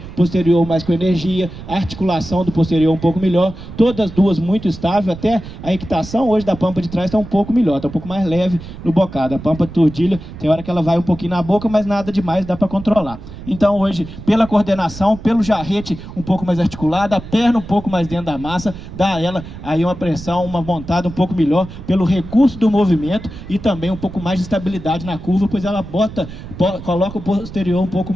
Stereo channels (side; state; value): right; noise; rumble, 13 dB below the sound